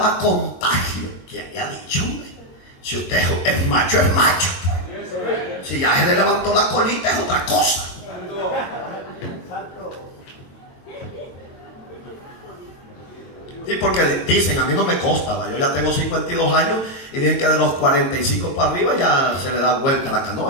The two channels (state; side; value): late; right; 22 ms